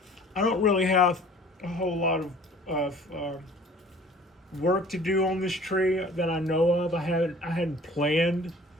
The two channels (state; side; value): normal; both; correlation 0.49